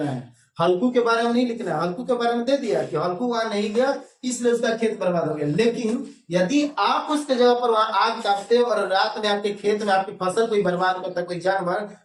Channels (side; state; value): both; identical; correlation 1.00